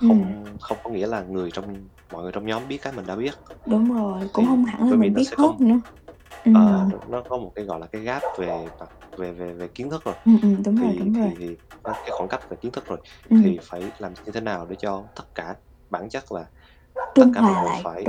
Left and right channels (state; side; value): identical; both; correlation 1.00